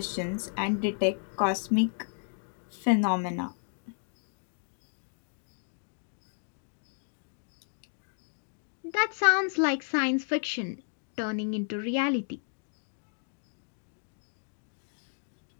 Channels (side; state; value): right; silent; 56 dB below the other